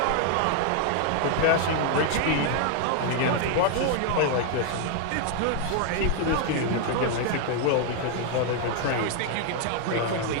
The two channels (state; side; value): different; both; correlation 0.00